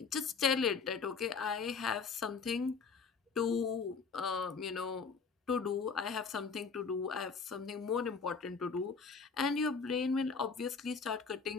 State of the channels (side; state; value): right; quieter; 5.3 dB